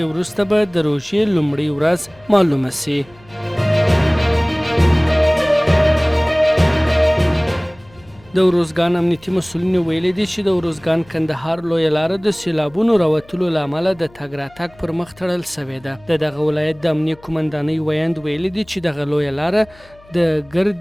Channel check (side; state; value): left; noise; hum, 26 dB below the sound